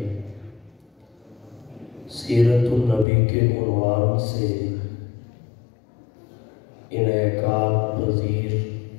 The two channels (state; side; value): drops out; right; at 3.1 s